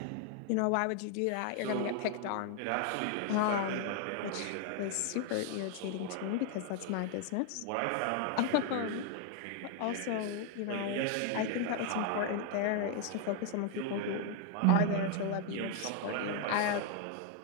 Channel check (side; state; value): both; different; correlation 0.01